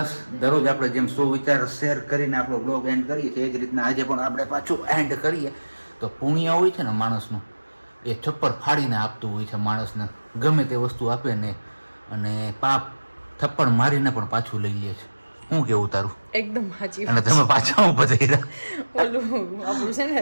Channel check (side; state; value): both; inverted; correlation -1.00